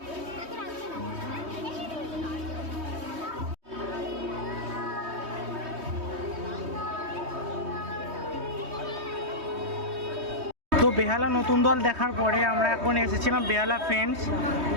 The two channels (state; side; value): late; left; 3.2 ms